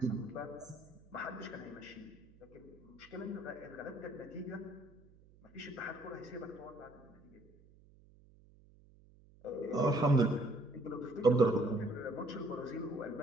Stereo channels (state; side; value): noise; right; hum, 25 dB below the sound